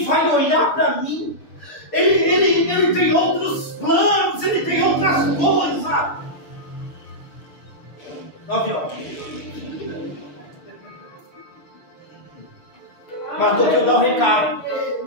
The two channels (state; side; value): late; right; 6.8 ms